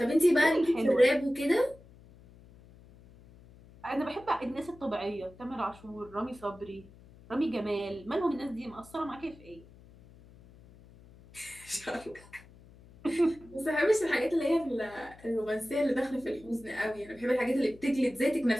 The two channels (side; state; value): left; noise; hum, 23 dB below the sound